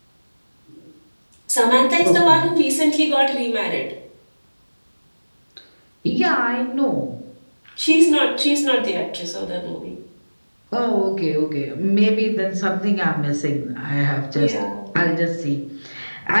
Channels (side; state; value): both; inverted; correlation -1.00